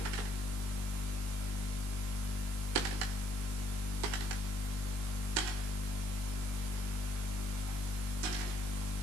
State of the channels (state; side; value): late; left; 19 ms